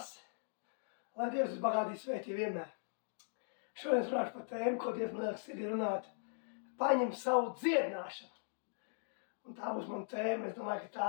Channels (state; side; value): silent; right; digital silence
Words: lai Dievs jūs bagātīgi svētī vienmēr. Šodien es runāšu par tēmu, ko Dievs man liekas sirdī runāt. Paņem savu dziedināšanu. Un tā būs mana tēma. Es domāju, ka